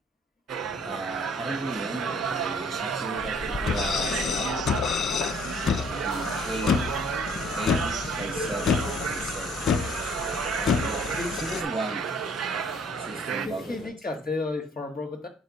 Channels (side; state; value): both; normal; correlation 0.58